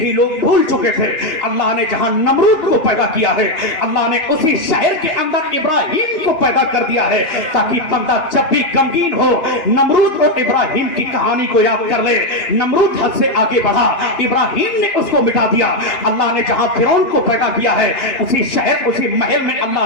लोग भूल चुके थे अल्लाह ने जहां नमरूद को पैदा किया है, अल्लाह ने उसी शहर के अंदर इब्राहिम को पैदा कर दिया है, ताकि बंदा जब भी गमगीन हो नमरूद और इब्राहिम की कहानी को याद कर ले। नमरूद हद से आगे बढ़ा, इब्राहिम ने उसको मिटा दिया। अल्लाह ने जहां फिरौन को पैदा किया है, उसी शहर उसी महल में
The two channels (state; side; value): late; right; 2.4 ms